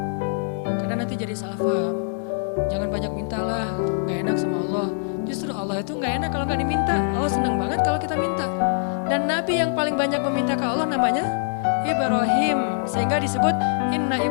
Karena nanti jadi salah paham. Jangan banyak mintalah, gak enak sama Allah. Justru Allah itu gak enak kalau gak diminta. Allah senang banget kalau kita minta. Dan Nabi yang paling banyak meminta ke Allah namanya Ibrahim. Sehingga disebut Inna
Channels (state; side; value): silent; right; 63 dB below the other